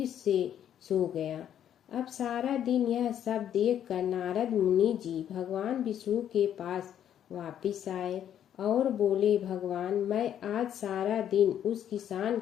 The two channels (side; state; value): right; quieter; 10.0 dB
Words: से सो गया। अब सारा दिन यह सब देखकर नारद मुनि जी भगवान विष्णु के पास वापिस आए और बोले, भगवान, मैं आज सारा दिन उस किसान